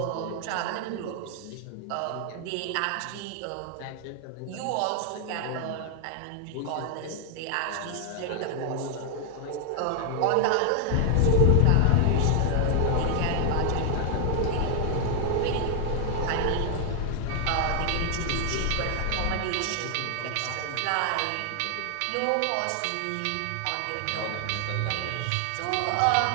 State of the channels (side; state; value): both; different; correlation 0.00